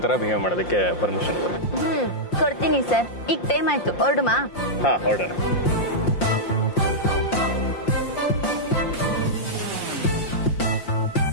ಥರ ಬಿಹೇವ್ ಮಾಡೋದಕ್ಕೆ ಪರ್ಮಿಷನ್ ಕೊಡಿ. ಕೊಡ್ತೀನಿ ಸರ್. ಈಗ ಟೈಮ್ ಆಯ್ತು, ಹೊರಡುಮಾ? ಹಾಂ, ಹೊರಡೋಣ.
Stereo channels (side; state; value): right; late; 5.7 ms